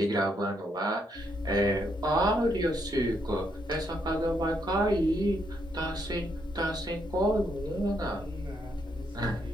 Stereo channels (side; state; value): both; normal; correlation 0.76